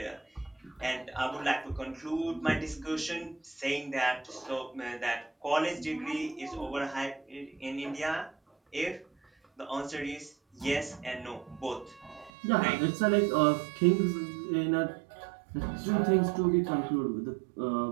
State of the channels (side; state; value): left; drops out; at 12.3 s